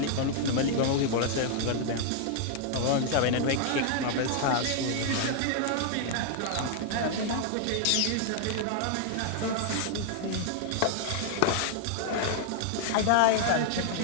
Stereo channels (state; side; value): different; both; correlation 0.00